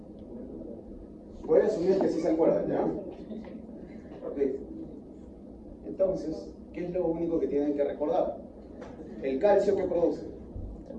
Voy a asumir que sí se acuerdan, ¿ya? Ok. Entonces, ¿qué es lo único que tienen que recordar? El calcio que produce.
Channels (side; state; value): both; identical; correlation 1.00